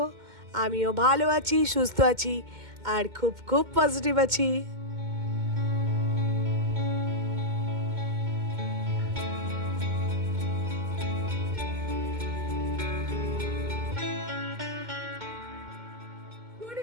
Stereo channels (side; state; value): left; late; 2.1 ms